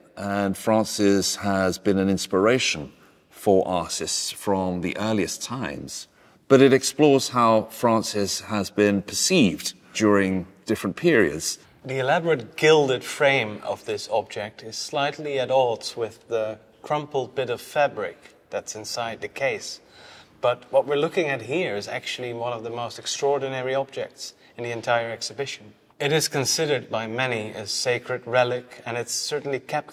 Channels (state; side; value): identical; both; correlation 1.00